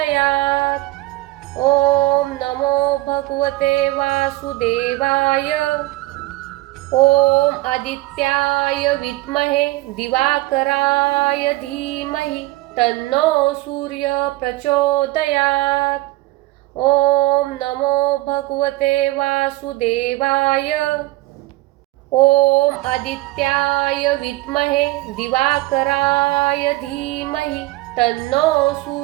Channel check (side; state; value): left; quieter; 18.6 dB